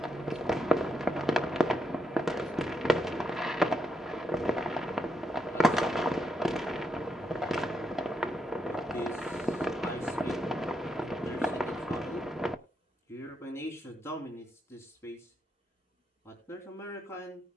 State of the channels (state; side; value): normal; both; correlation 0.80